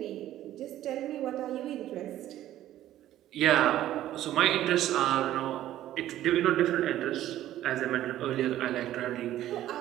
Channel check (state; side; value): quieter; left; 13.2 dB